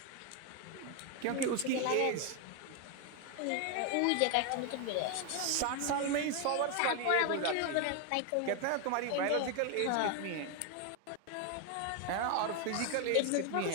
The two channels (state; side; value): different; both; correlation 0.01